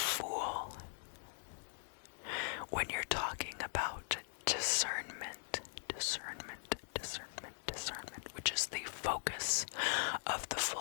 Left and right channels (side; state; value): right; silent; digital silence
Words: when you're talking about discernment, which is the focus of the